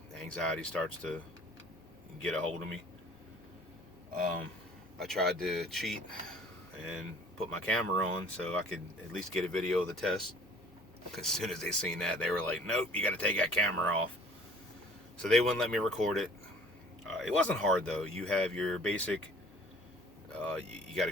anxiety starts to get a hold of me. Um, I tried to cheat and put my camera on so I could at least get a video of the test. As soon as they seen that, they were like, "Nope, you got to take that camera off." So they wouldn't let me record it. It wasn't hard though. You have your basic. You got to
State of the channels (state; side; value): noise; left; hum, 28 dB below the sound